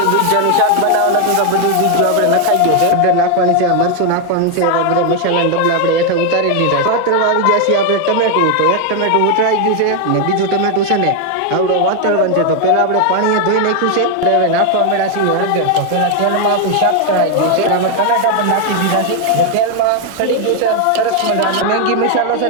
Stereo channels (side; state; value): both; different; correlation 0.01